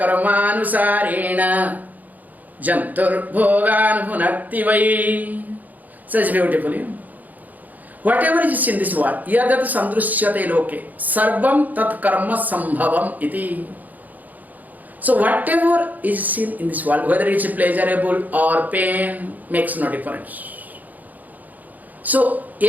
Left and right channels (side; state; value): left; late; 0.081 ms